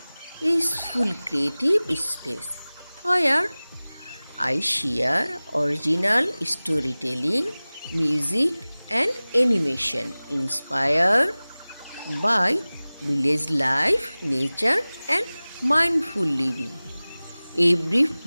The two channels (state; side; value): inverted; both; correlation -0.99